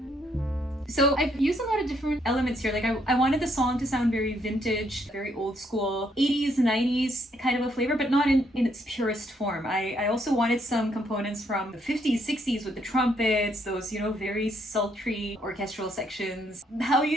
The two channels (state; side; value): normal; both; correlation 0.72